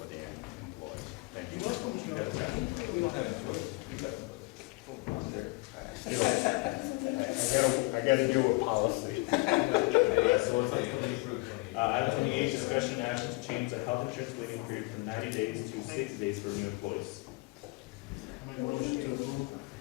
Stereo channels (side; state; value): right; quieter; 25.3 dB